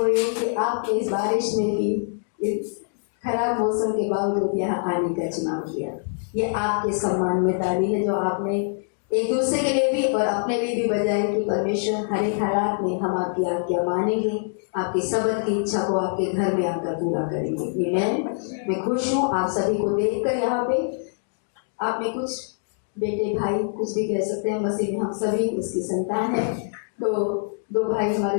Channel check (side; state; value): right; silent; digital silence